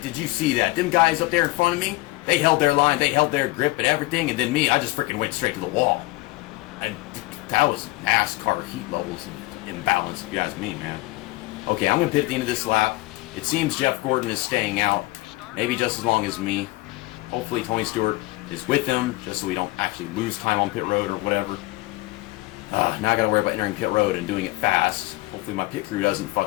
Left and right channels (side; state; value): right; quieter; 20.7 dB